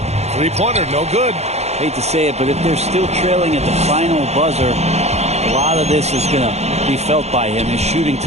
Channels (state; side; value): late; left; 0.31 ms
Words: 3-pointer, no good. Hate to say it, but if they're still trailing at the final buzzer, a lot of this is going to be felt by him. His shooting